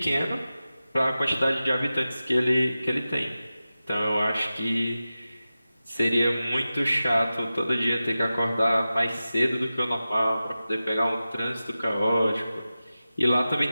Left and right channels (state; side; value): inverted; both; correlation -0.95